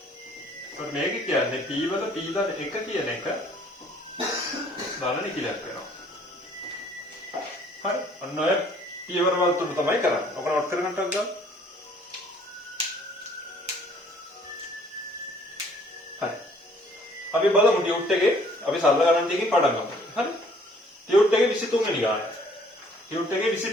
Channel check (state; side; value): normal; both; correlation 0.59